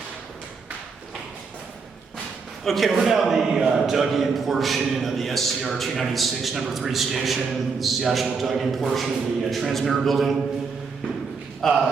Okay, we're now in the dug-in portion of the SCR 296 number 3 station. This is the actual dug-in portion of the transmitter building. You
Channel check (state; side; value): quieter; left; 5.0 dB